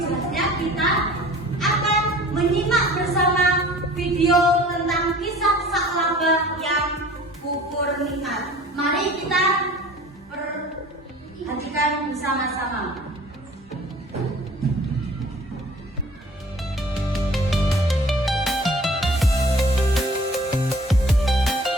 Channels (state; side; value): normal; both; correlation 0.47